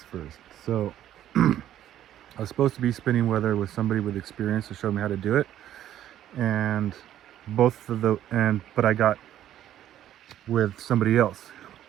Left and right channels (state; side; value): quieter; left; 11.8 dB